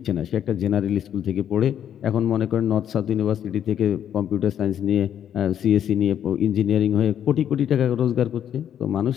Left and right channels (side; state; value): right; quieter; 9.7 dB